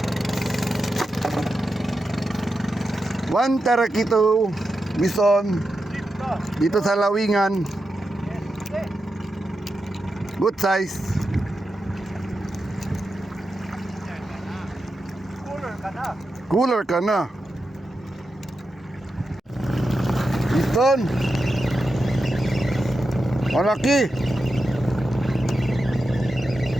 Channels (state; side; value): normal; both; correlation 0.89